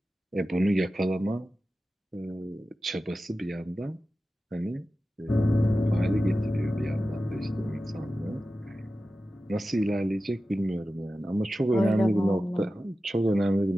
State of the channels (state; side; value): normal; both; correlation 0.94